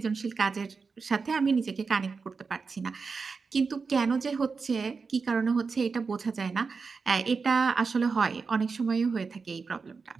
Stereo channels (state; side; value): quieter; left; 4.9 dB